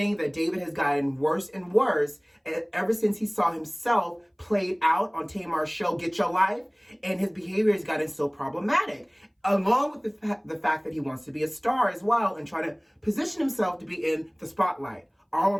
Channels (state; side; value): identical; both; correlation 1.00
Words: that David has gotten worse and worse ever since he saw himself played out on Tamar's show, Get Your Life, and his behavior has gotten so problematic, along with the fact that he wants to be a star as well and trying to position himself to be in the spotlight. All